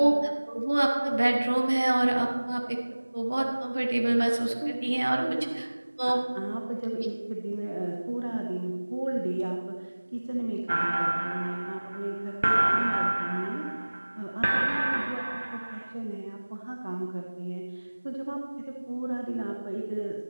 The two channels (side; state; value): both; inverted; correlation -1.00